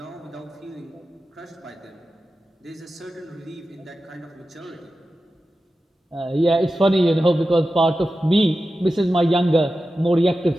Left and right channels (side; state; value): both; normal; correlation 0.93